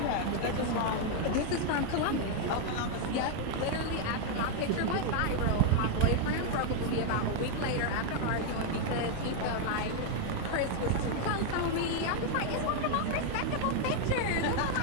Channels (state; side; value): different; both; correlation 0.00